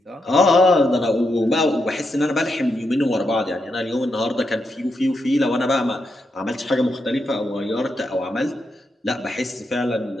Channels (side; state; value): both; normal; correlation 0.83